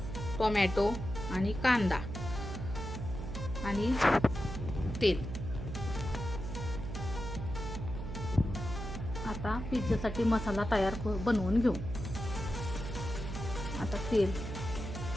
टोमॅटो आणि कांदा आणि तेल. आता पिझ्झासाठी मसाला तयार बनवून घेऊ. आता तेल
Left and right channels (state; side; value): noise; right; hum, 7 dB below the sound